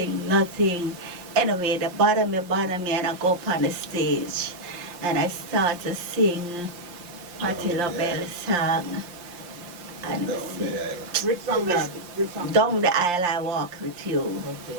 nothing. Anyway, they bother me, and I go up on the stage. And I start to sing Patti LaBelle song. And Which song that? Which song? Down the aisle I walk with you.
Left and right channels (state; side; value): late; left; 5.7 ms